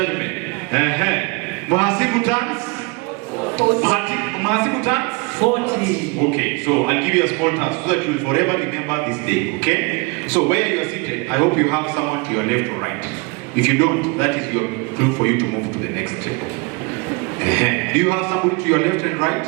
Mhasibu turns 40. Okay, so I'll give you a small task so that you will forever remember this day, okay? So where you are seated, I hope you have someone to your left or right. If you don't, that is your clue for you to move to the next step. Do you have somebody to your left and right?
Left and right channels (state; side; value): quieter; left; 29.2 dB